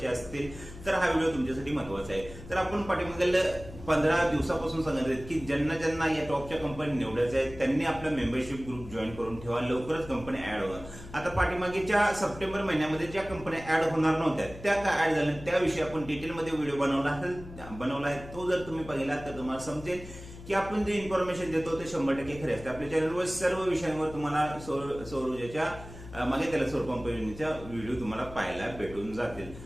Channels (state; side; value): noise; left; hum, 15 dB below the sound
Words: असतील तर हा व्हिडिओ तुमच्यासाठी महत्वाचा आहे. तर आपण पाठीमागील 15 दिवसापासून सांगत आहेत की ज्यांना ज्यांना या टॉपच्या कंपनी निवडायच्या आहेत त्यांनी आपला मेंबरशिप ग्रुप जॉईन करून ठेवा, लवकरच कंपन्या ऍड होणार. आता पाठीमागेच्या सप्टेंबर महिन्यामध्ये ज्या कंपन्या ऍड होणार नव्हत्या त्या का ऍड झाल्या त्याविषयी आपण डिटेलमध्ये व्हिडिओ बनवला आहे. तो जर तुम्ही पाहिला तर तुम्हाला समजेल की आपण जे इन्फॉर्मेशन देतो ते 100% खरे असते. आपल्या चॅनलवर सर्व विषयांवर तुम्हाला सौर ऊर्जेच्या मागे त्याला सौर पंप योजनेच्या व्हिडिओ तुम्हाला पाहायला भेटून जातील.